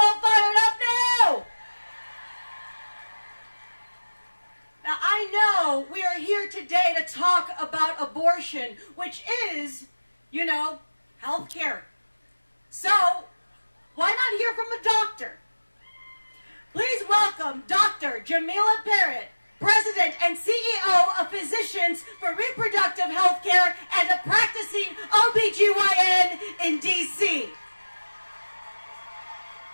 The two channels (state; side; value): inverted; both; correlation -1.00